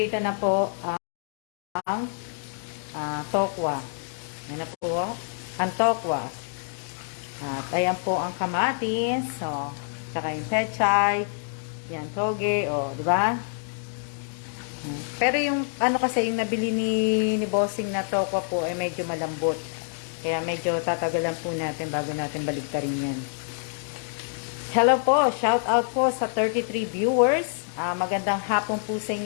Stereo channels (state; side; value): silent; right; digital silence